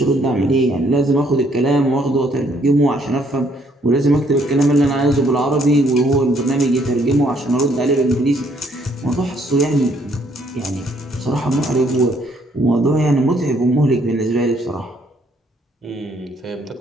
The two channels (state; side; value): normal; both; correlation 0.67